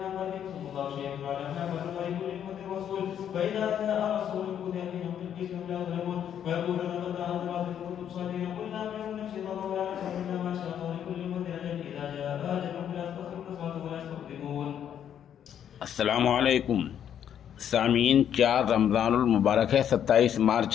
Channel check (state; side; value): quieter; right; 9.4 dB